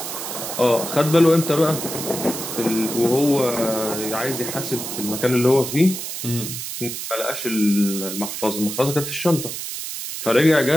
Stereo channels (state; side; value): noise; right; hiss, 6 dB below the sound